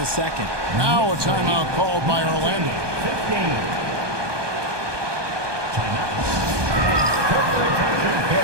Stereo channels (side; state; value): left; late; 1.2 ms